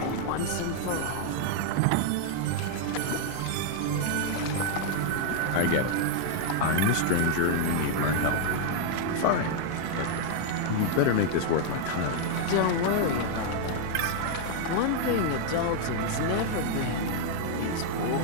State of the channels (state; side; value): different; both; correlation 0.00